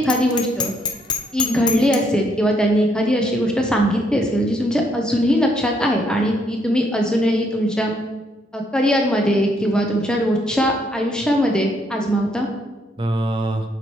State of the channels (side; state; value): both; normal; correlation 0.71